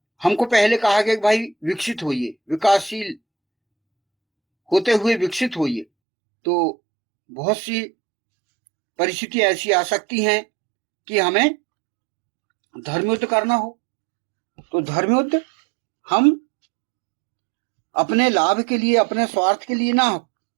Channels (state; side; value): drops out; left; at 5.9 s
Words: हमको पहले कहा गया कि भाई विकसित होइए, विकासशील होते हुए विकसित होइए। तो बहुत सी परिस्थिति ऐसी आ सकती हैं कि हमें धर्मयुद्ध करना हो। तो धर्मयुद्ध हम अपने लाभ के लिए, अपने स्वार्थ के लिए ना